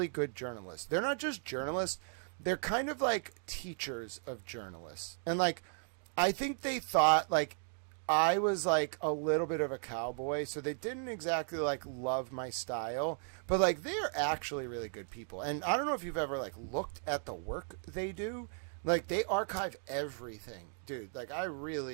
good journalists. They're not just journalists, they're kind of like teachers of journalists. And like I think they thought like I was like a little bit of a cowboy, so they didn't exactly like love my style, but like they're actually really good people. And I don't know if you've ever like looked at the work they do. Like they archive everything, dude. Like I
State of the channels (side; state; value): left; silent; 54 dB below the other